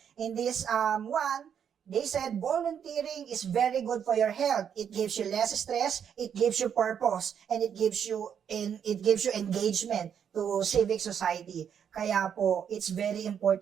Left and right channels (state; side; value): quieter; left; 8.1 dB